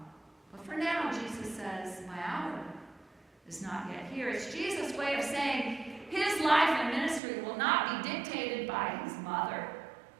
But for now, Jesus says, my hour is not yet here. It's Jesus' way of saying his life and ministry will not be dictated by his mother,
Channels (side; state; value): left; drops out; at 7.2 s